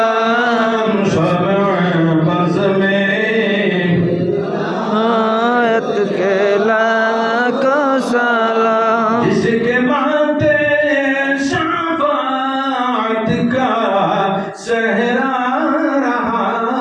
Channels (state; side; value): identical; both; correlation 1.00